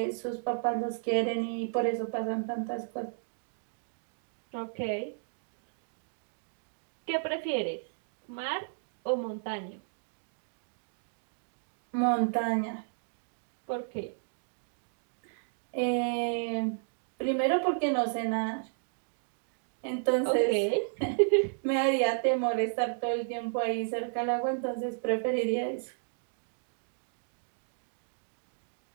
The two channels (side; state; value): left; silent; digital silence